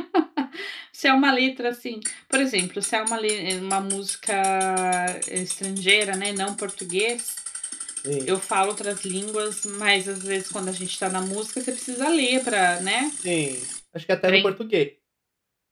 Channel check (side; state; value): both; identical; correlation 1.00